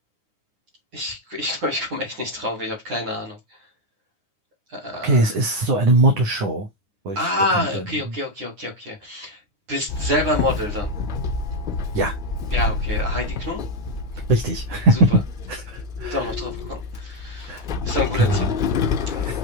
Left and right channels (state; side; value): late; left; 9.8 ms